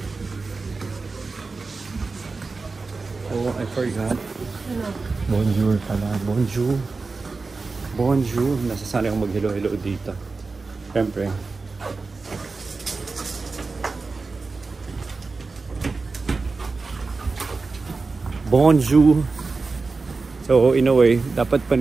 Oh, I forgot. Bonjour pala. Bonjour. Bonjour. Nasasanay akong mag-hello-hello dito. Siyempre. Bonjour. So, in a way, dapat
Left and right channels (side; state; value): left; quieter; 4.1 dB